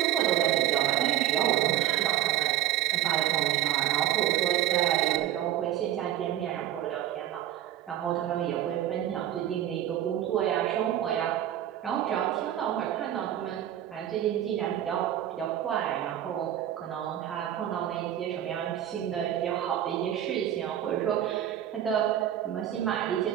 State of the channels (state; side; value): quieter; left; 12.0 dB